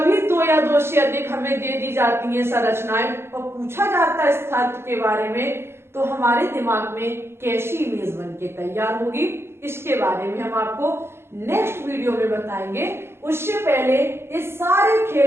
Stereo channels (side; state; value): left; late; 0.12 ms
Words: 2 या 2 से अधिक हमें दे दी जाती हैं संरचनाएं और पूछा जाता है स्थायित्व के बारे में, तो हमारे दिमाग में कैसी इमेज बन के तैयार होगी, इसके बारे में हम आपको नेक्स्ट वीडियो में बताएंगे। उससे पहले इस सारे